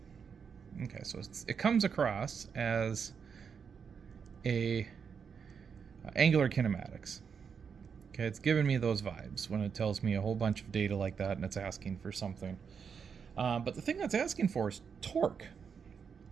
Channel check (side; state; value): left; quieter; 6.4 dB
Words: Okay, so it comes across as a angular kinematics. Okay, it's giving me those vibes when it tells me a whole bunch of data like that and it's asking for something. But the thing that's asking for is torque.